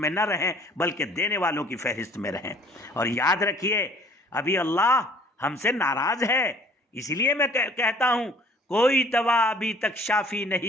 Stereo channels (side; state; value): both; normal; correlation 0.54